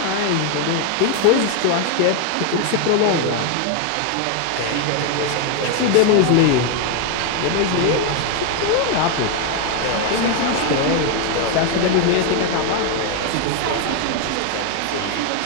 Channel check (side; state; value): both; different; correlation 0.01